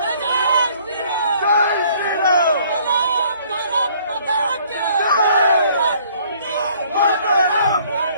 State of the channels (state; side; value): inverted; both; correlation -0.59